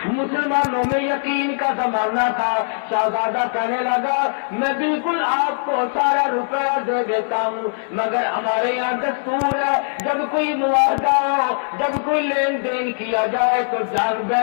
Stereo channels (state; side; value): silent; right; digital silence